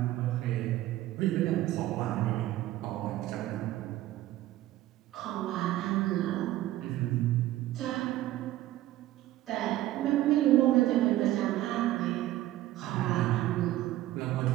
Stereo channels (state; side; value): quieter; left; 15.1 dB